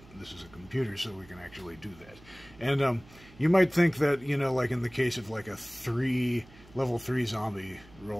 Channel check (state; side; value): noise; right; hum, 23 dB below the sound